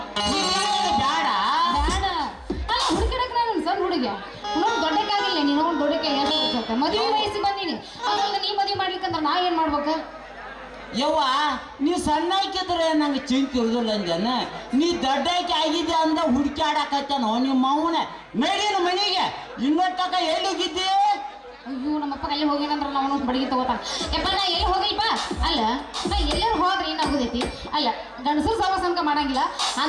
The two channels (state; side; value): identical; both; correlation 1.00